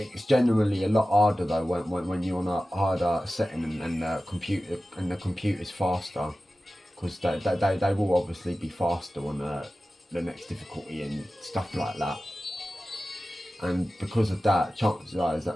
generally a lot harder though when you're on a harder setting and the computer's faster, because they will obviously be faster on the next difficulty and stuff like that. And because of that, chances are is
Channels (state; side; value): normal; both; correlation 0.95